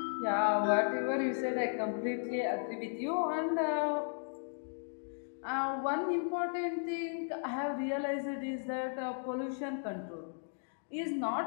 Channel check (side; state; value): right; silent; digital silence